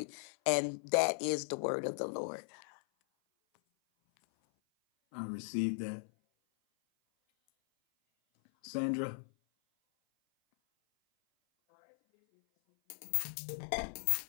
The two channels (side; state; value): right; silent; 53 dB below the other